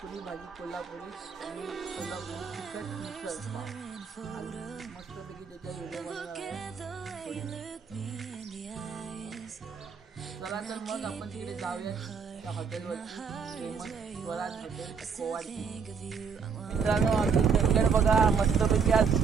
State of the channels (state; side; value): quieter; left; 6.0 dB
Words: पुरी भाजी कोल्हापुरी आणि कोल्हापुरी तिखट मिसळ पाव. मस्तपैकी त्याचा व्हिडिओ बनवणार आहे. चला तर मग आपण तिकडे जाऊया त्या हॉटेलवरती, फेमस स्वराज हॉटेल कोवाडी. मित्रांनो, आमचं चंदगड बघा, मस्तपैकी आज